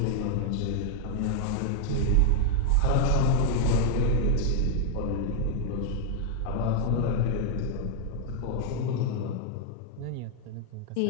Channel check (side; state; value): both; different; correlation 0.00